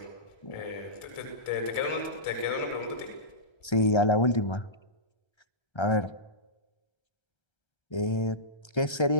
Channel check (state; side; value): late; right; 1.3 ms